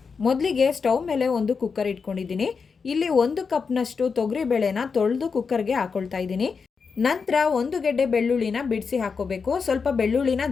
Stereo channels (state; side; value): quieter; right; 5.4 dB